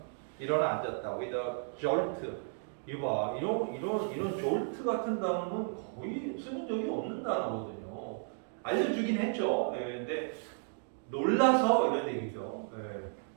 일어나 앉았다. With a jolt. 이봐, 이런 jolt 같은 단어는 거의 쓰는 적이 없는 단어거든요. 알려주긴 했죠. 근데 놀라서 이런 얘기죠.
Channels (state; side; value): silent; left; 55 dB below the other